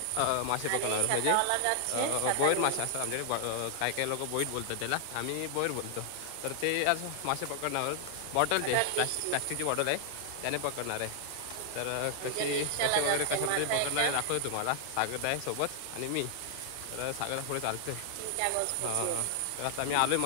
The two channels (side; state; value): both; different; correlation 0.00